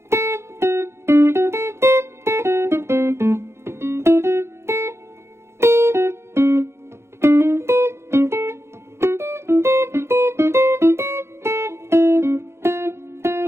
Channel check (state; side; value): late; left; 0.13 ms